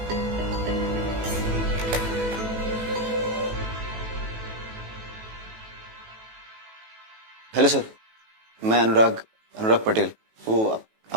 हेलो सर, मैं अनुराग पटेल। वो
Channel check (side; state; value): left; late; 18 ms